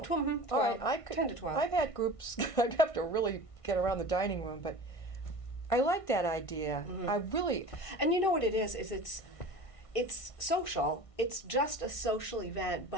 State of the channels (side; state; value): right; late; 1.5 ms